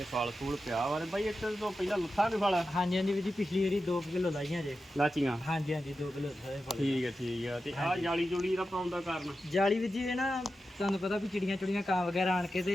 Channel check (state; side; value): normal; both; correlation 0.91